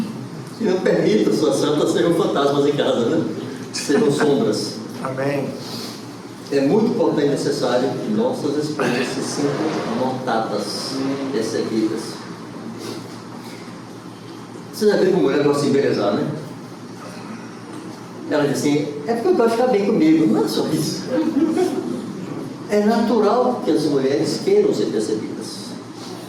que não permitam suas santas serem fantasmas em casa, né? Serão sombras. Amém. É muito importante e necessário que nossas esposas se sintam notadas, percebidas. Você já viu como mulher gosta de embelezar, né? Ela diz assim, é porque eu gosto de ficar bem comigo. Não é só isso. É natural que as mulheres queiram ser percebidas.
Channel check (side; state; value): both; identical; correlation 1.00